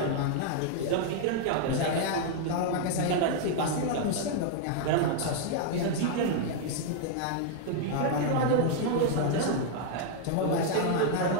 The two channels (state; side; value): different; both; correlation 0.00